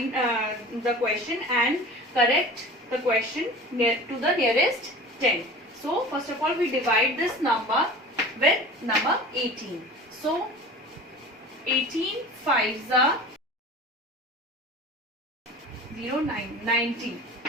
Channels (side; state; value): both; normal; correlation 0.38